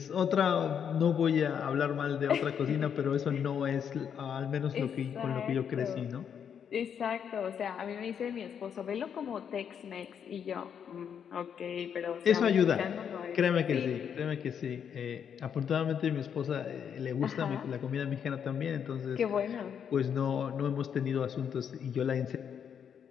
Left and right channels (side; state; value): right; quieter; 7.9 dB